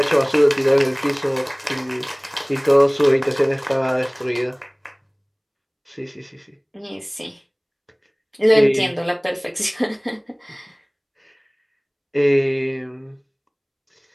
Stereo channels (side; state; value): both; identical; correlation 1.00